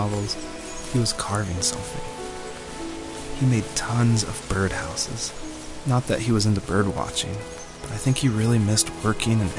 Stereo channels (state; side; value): identical; both; correlation 1.00